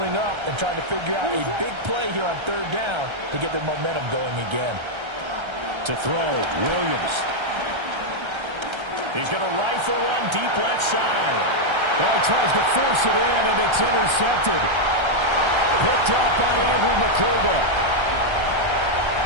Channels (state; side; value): late; left; 1.3 ms